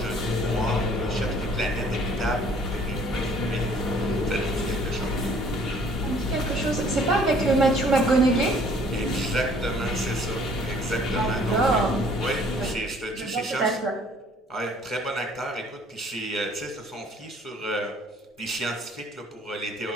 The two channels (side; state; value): both; normal; correlation 0.57